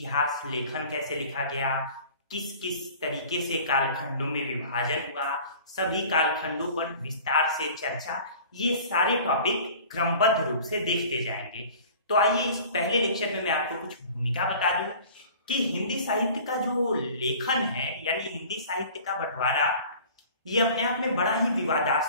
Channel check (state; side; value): inverted; both; correlation -0.44